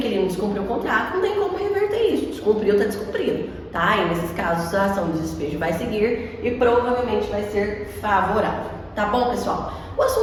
descumpriu o contrato, não tem como reverter isso. Descumpriu, está descumprido, tá? E nesses casos a ação de despejo vai seguir e provavelmente vai ser favorável. Tá bom, pessoal? O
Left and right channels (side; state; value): both; identical; correlation 1.00